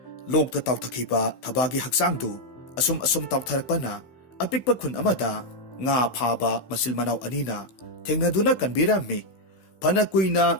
ꯂꯣꯛꯇ ꯇꯥꯎꯊꯈꯤꯕ ꯊꯕꯥꯒꯤ ꯍꯛꯆꯥꯡꯗꯨ ꯑꯁꯨꯝ ꯑꯁꯨꯝ ꯇꯥꯎꯊꯔꯛꯄꯅ ꯑꯄꯤꯛꯄ ꯈꯨꯟ ꯑꯃꯗ ꯉꯥ ꯐꯥꯕ ꯃꯆꯤꯜ ꯃꯅꯥꯎ ꯑꯅꯤꯅ ꯊꯦꯡꯅꯗꯨꯅ ꯀꯟꯕꯤꯔꯝꯃꯤ꯫ ꯐꯅ ꯀꯨꯏꯅ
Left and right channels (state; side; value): late; right; 15 ms